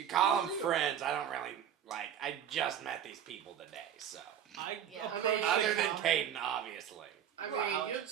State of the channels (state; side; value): quieter; left; 9.5 dB